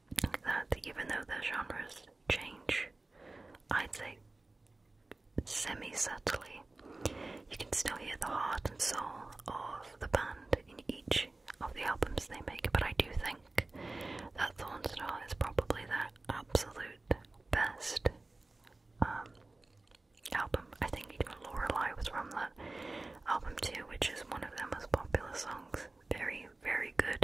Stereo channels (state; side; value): quieter; left; 3.1 dB